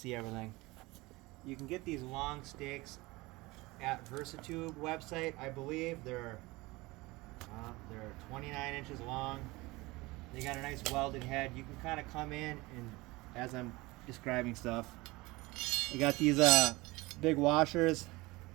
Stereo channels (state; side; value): quieter; left; 22.0 dB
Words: everything? You can get these long stakes at Versatube website. I believe they're 29 inches long. They got a nice welded head. You can kind of come in and, as I'm describing stuff, they got these big washers.